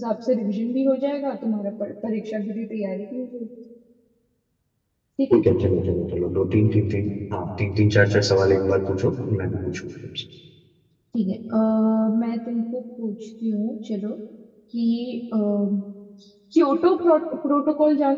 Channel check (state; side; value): identical; both; correlation 1.00